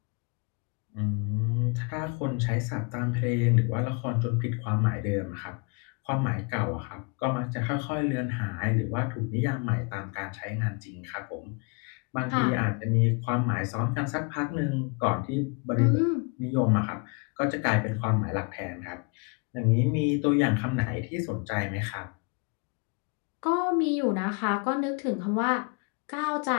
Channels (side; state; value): right; quieter; 33.2 dB